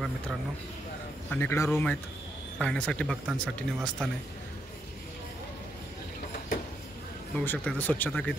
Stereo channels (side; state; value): both; normal; correlation 0.78